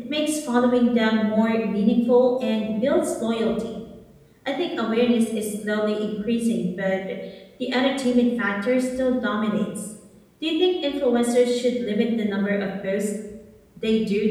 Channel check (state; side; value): identical; both; correlation 1.00